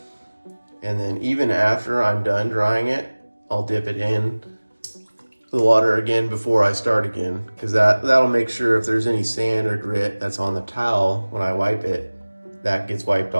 And then even after I'm done drying it, I'll dip it in the water again before I start again, because that'll make sure if there's any sand or grit that's on the towel when I wipe it, that gets wiped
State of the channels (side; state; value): both; inverted; correlation -1.00